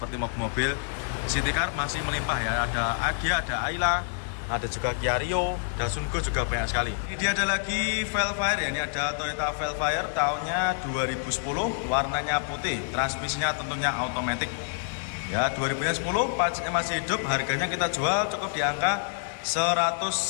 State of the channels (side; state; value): right; silent; digital silence